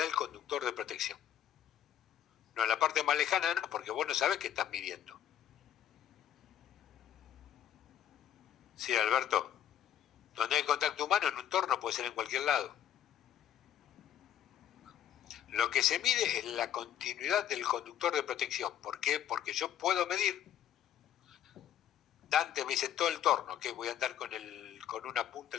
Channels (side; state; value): right; quieter; 10.6 dB